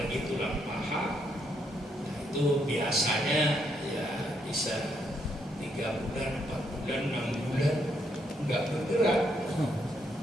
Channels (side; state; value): both; normal; correlation 0.75